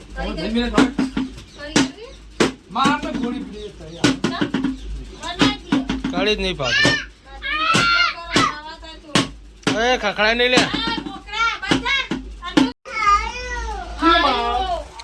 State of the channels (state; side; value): identical; both; correlation 1.00